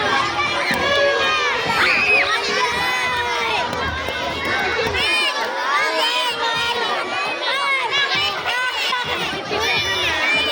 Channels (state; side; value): identical; both; correlation 1.00